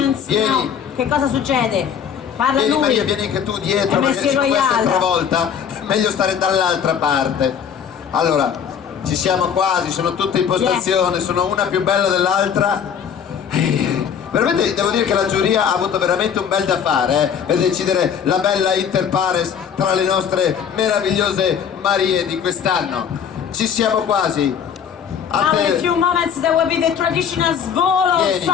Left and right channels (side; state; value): right; quieter; 7.8 dB